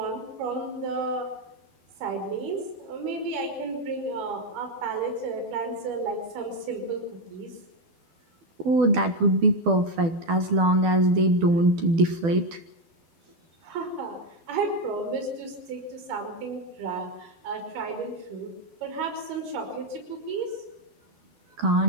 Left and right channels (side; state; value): left; late; 12 ms